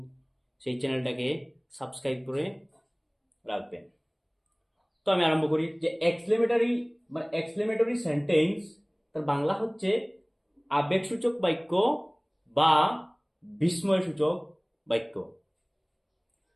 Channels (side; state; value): both; identical; correlation 1.00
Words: সেই চ্যানেলটাকে সাবস্ক্রাইব করে রাখবেন। তো আমি আরম্ভ করি যে এক্সক্লেমেটরি সেন্টেন্স তার বাংলা হচ্ছে আবেগসূচক বাক্য বা বিস্ময়সূচক বাক্য।